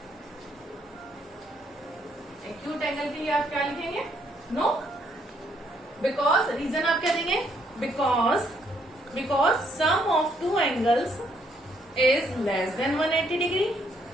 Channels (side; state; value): both; normal; correlation 0.70